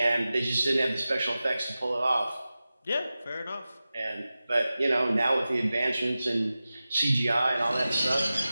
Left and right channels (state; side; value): inverted; both; correlation -0.95